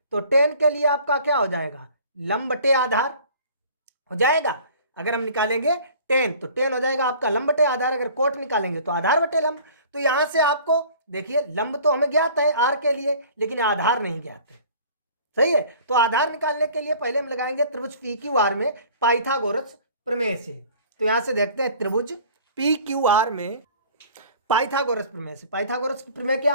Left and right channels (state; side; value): inverted; both; correlation -0.48